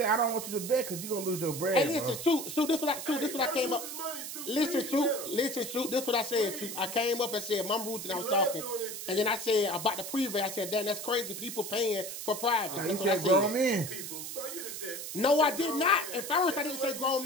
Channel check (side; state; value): right; noise; hiss, 7 dB below the sound